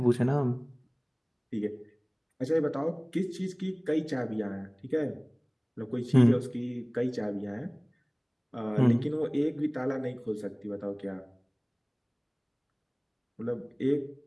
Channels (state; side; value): identical; both; correlation 1.00